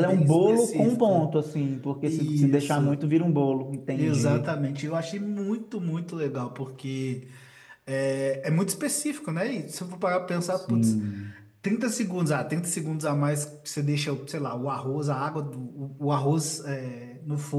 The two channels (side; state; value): both; identical; correlation 1.00